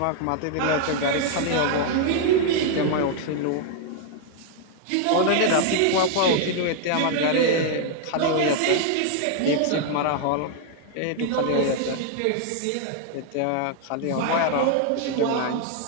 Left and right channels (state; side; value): different; both; correlation 0.00